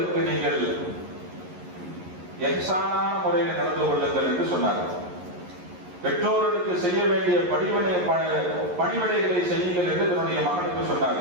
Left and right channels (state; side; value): late; left; 11 ms